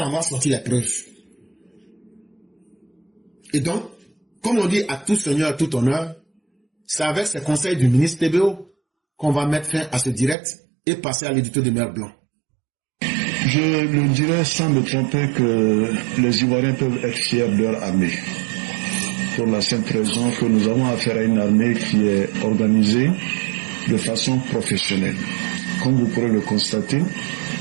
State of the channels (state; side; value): drops out; left; at 10.4 s